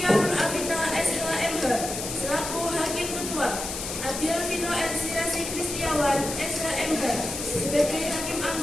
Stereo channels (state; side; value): noise; left; hiss, 6 dB below the sound